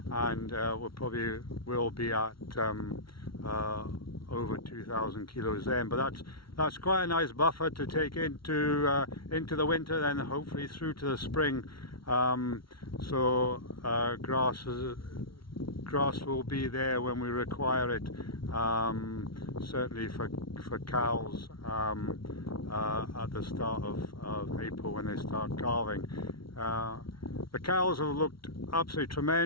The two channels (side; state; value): right; late; 0.74 ms